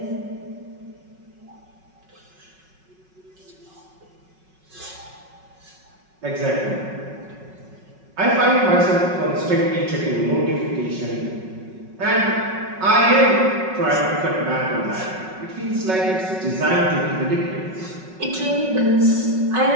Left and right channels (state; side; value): late; left; 5.4 ms